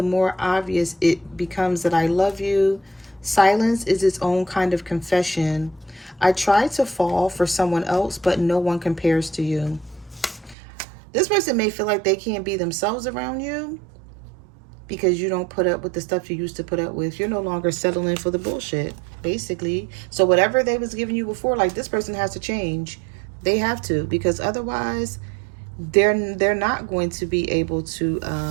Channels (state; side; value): drops out; left; at 10.6 s